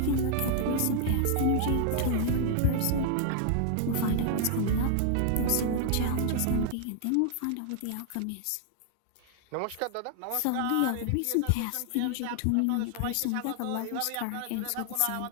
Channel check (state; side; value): different; both; correlation 0.00